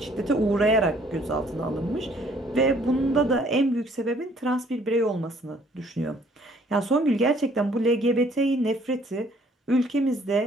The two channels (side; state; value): both; normal; correlation 0.60